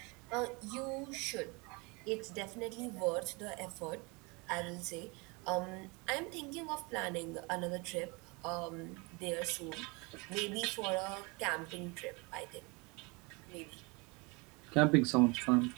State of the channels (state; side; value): quieter; left; 28.3 dB